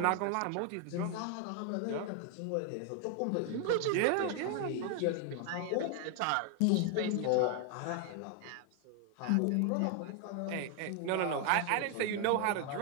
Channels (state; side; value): different; both; correlation 0.01